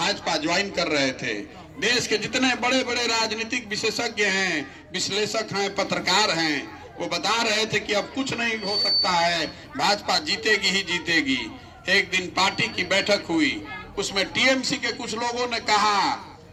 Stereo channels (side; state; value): both; identical; correlation 1.00